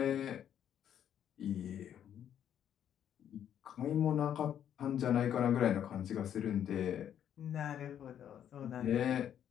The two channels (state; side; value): quieter; right; 9.8 dB